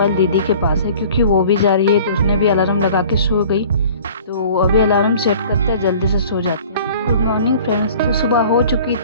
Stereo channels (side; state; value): both; inverted; correlation -0.47